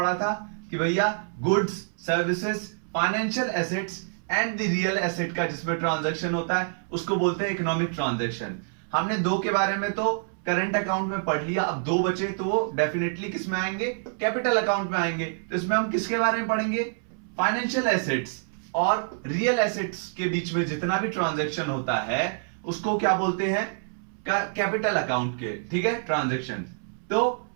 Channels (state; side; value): silent; left; 60 dB below the other